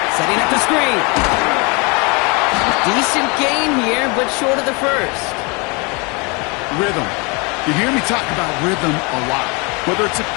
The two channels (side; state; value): right; quieter; 30.0 dB